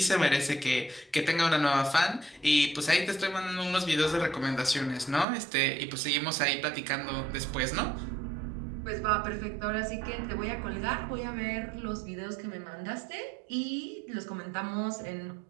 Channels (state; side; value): drops out; left; at 5.2 s